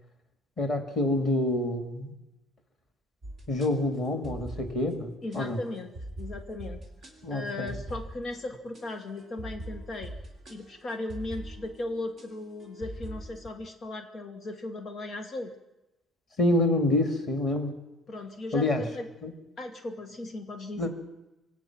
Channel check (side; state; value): both; normal; correlation 0.46